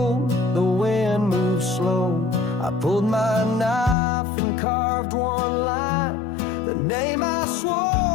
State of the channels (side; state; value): right; drops out; at 4.0 s